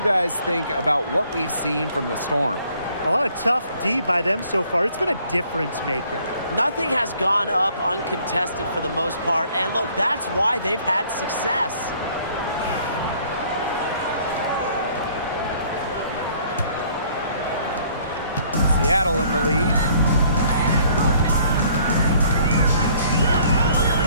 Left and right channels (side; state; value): both; inverted; correlation -0.60